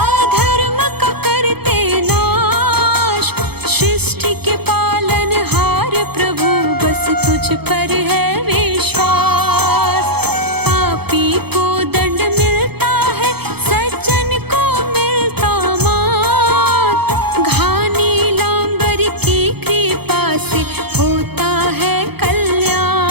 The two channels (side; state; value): left; late; 0.97 ms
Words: अधर्म का करते नाश, सृष्टि के पालनहार प्रभु बस तुझ पर है विश्वास। पापी को दंड मिलता है सज्जन को मिलता मान, घानी लांबर की कृपा से होता है